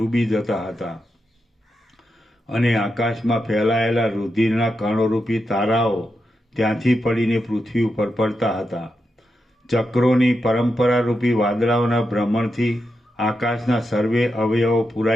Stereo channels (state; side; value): normal; both; correlation 0.86